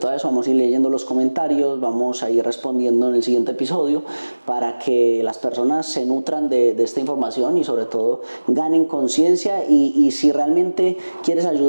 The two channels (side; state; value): both; inverted; correlation -1.00